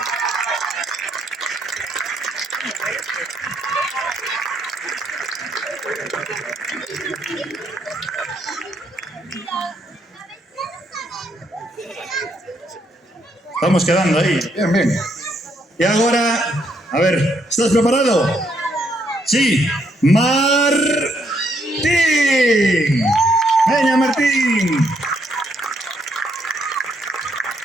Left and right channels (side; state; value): both; normal; correlation 0.74